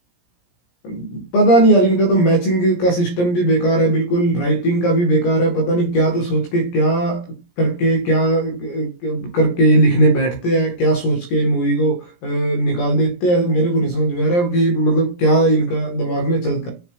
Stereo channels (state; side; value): late; right; 17 ms